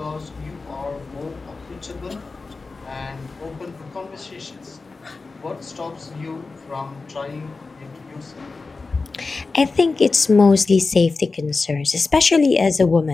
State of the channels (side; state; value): right; quieter; 4.0 dB